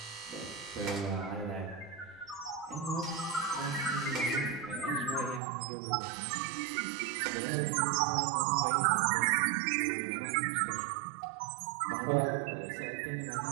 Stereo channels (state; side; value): drops out; left; at 5.4 s